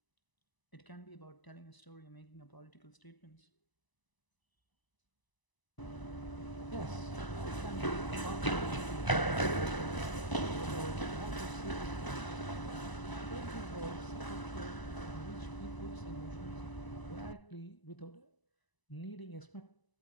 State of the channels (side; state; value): right; late; 1.0 ms